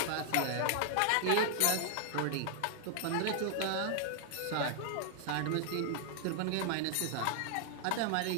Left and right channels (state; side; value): different; both; correlation 0.00